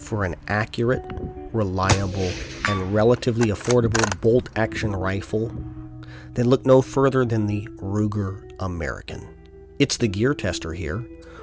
an accurate, reliable, and relatively affordable bolt-action rifle? Then look no further than the Ruger American. It's the Gear Tester here.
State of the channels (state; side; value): identical; both; correlation 1.00